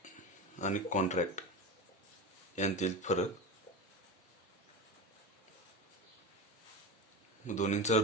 आणि कॉन्ट्रॅक्ट यांतील फरक. दोन्हींचा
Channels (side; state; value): both; normal; correlation 0.23